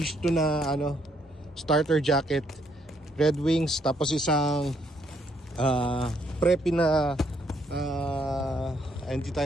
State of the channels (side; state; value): both; normal; correlation 0.71